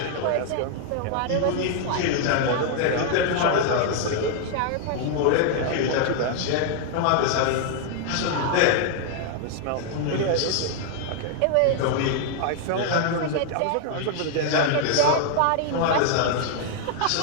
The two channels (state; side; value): different; both; correlation 0.00